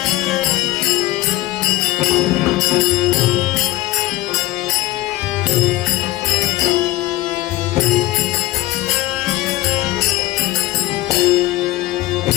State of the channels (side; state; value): right; quieter; 16.9 dB